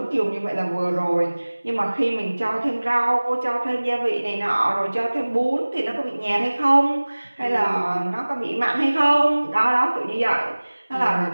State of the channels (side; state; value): both; inverted; correlation -1.00